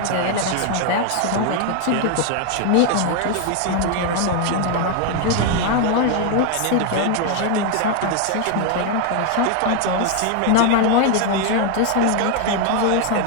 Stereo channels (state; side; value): different; both; correlation 0.01